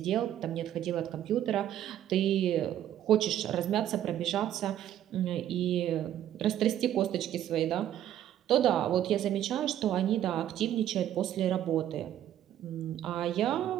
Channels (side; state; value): left; quieter; 11.4 dB